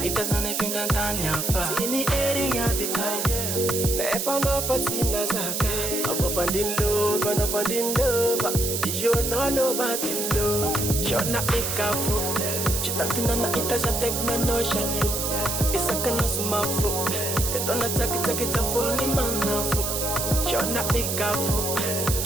ita zane finda ndani afa Sini eri ya bita Na efa mafatina zaka Abo fandin love, no fandin love Ijo no LOWBATTE love Shona ikafu Chitatina na ita ja tekna no shalu Isaka no sumafu Tetona taki taki tafuni manafu Shona ikafu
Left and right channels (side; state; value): right; noise; hiss, 2 dB below the sound